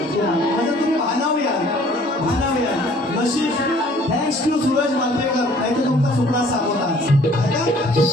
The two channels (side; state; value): both; normal; correlation 0.56